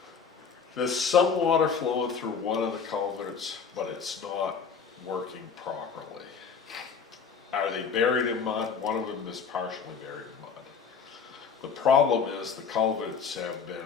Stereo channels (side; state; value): right; quieter; 6.1 dB